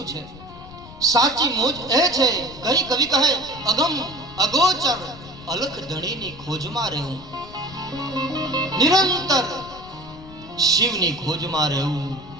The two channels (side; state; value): left; noise; rumble, 17 dB below the sound